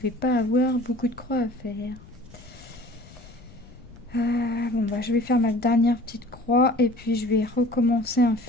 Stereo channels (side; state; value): left; noise; rumble, 21 dB below the sound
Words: pas avoir beaucoup de croix à faire. Bon bah je vais faire ma dernière petite croix et puis je vais recommencer un